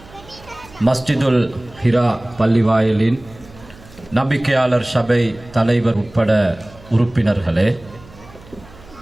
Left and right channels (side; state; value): right; noise; hum, 22 dB below the sound